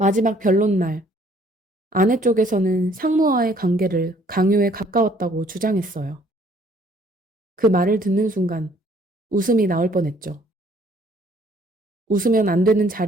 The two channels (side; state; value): both; normal; correlation 0.60